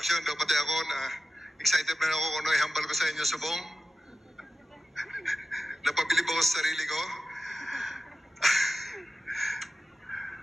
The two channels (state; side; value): normal; both; correlation 0.94